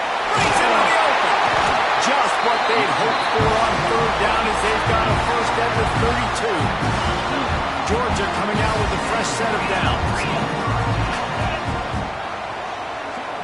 Brings it on the open. Just what they'd hoped for on third down as they've got a first at the 32. Georgia coming out with a fresh set of downs.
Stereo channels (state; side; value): identical; both; correlation 1.00